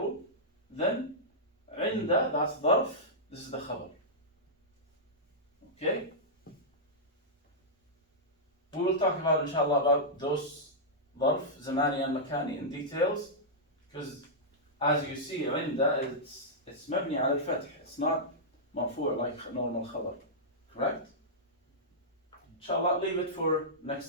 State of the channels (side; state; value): both; normal; correlation -0.12